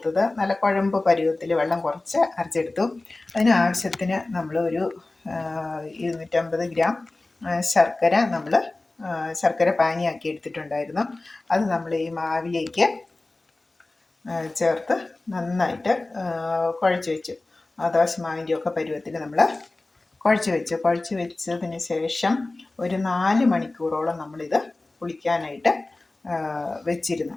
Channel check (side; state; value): right; quieter; 3.1 dB